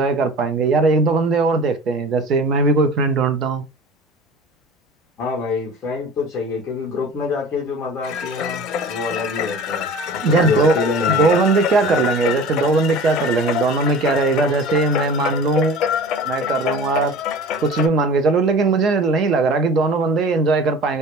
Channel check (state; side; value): normal; both; correlation 0.40